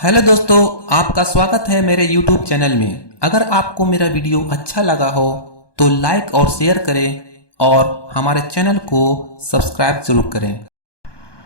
Hello दोस्तों, आपका स्वागत है मेरे YouTube चैनल में। अगर आपको मेरा वीडियो अच्छा लगा हो तो लाइक और शेयर करें और हमारे चैनल को सब्सक्राइब जरूर करें।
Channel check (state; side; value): late; right; 1.2 ms